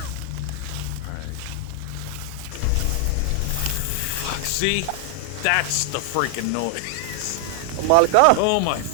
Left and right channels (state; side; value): different; both; correlation 0.00